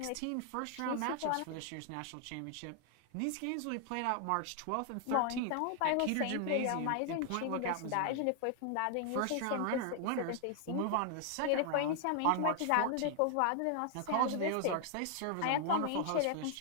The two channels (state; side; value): different; both; correlation 0.00